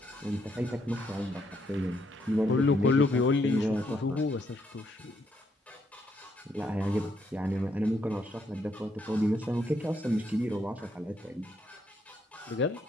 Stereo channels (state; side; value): normal; both; correlation 0.75